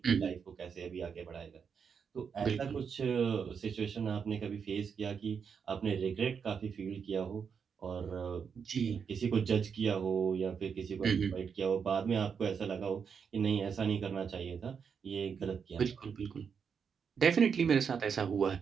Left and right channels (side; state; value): left; quieter; 6.5 dB